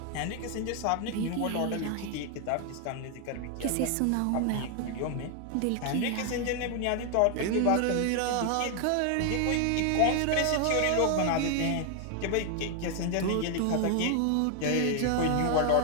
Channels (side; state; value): both; different; correlation 0.00